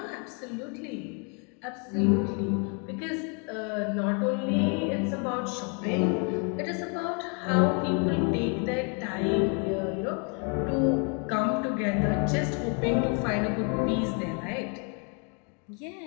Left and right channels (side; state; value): right; quieter; 37.5 dB